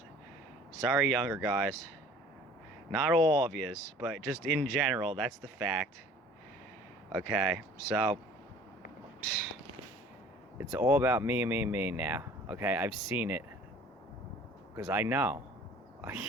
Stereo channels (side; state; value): both; normal; correlation 0.49